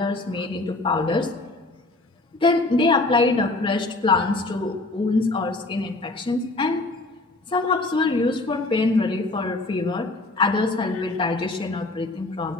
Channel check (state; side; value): quieter; right; 3.0 dB